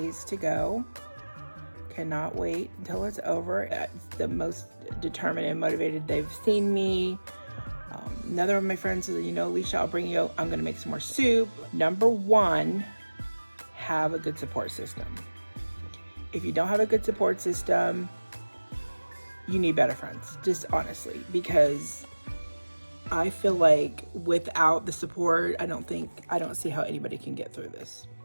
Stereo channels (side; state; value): both; inverted; correlation -1.00